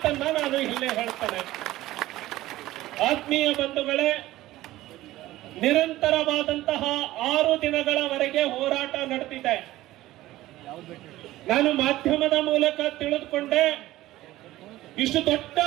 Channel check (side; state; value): left; quieter; 16.3 dB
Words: ನಾನು ಇಲ್ಲೇ ಹೇಳ್ತೇನೆ. ಆತ್ಮೀಯ ಬಂಧುಗಳೇ, ನಿರಂತರವಾದಂತಹ 6 ದಿನಗಳವರೆಗೆ ಹೋರಾಟ ನಡೆದಿದೆ. ನಾನು ಮಾಧ್ಯಮದ ಮೂಲಕ ತಿಳಿದುಕೊಂಡೆ, ಇಷ್ಟು ದೊಡ್ಡ